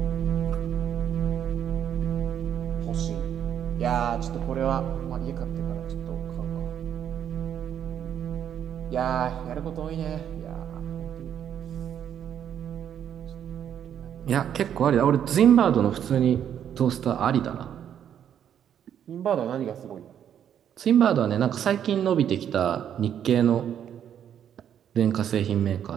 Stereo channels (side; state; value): left; quieter; 9.4 dB